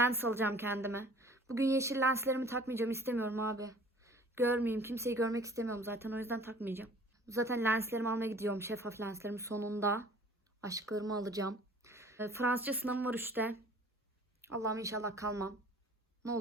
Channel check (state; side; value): normal; both; correlation 0.50